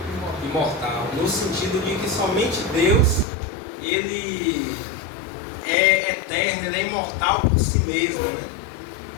imortal, no sentido de que somente Deus ele é eterno, ele é imortal por si mesmo, né?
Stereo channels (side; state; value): right; drops out; at 3.2 s